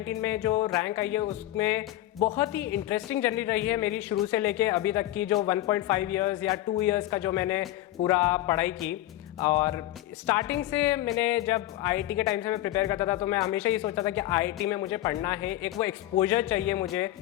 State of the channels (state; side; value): quieter; right; 14.9 dB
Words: में जो रैंक आई है उसमें बहुत ही इंटरेस्टिंग जर्नी रही है मेरी, शुरू से लेके अभी तक की जो 1.5 ईयर्स या 2 ईयर्स का जो मैंने पूरा पढ़ाई की। और स्टार्टिंग से मैंने जब आईआईटी के टाइम से मैं प्रिपेयर करता था तो मैं हमेशा ये सोचता था कि आईआईटी में मुझे पढ़ना है, एक वो एक्सपोजर चाहिए मुझे